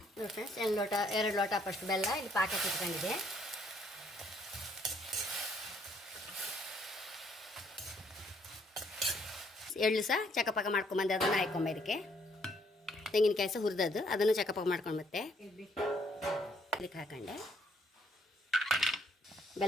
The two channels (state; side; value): normal; both; correlation 0.67